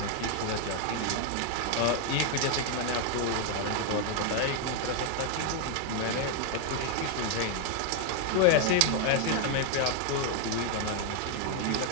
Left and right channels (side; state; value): both; different; correlation 0.00